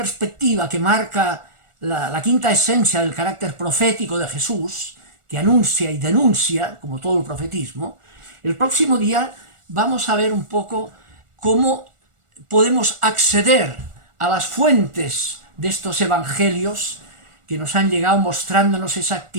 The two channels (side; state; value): left; late; 1.4 ms